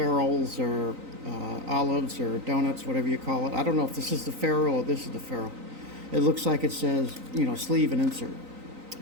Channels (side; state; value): left; late; 3.9 ms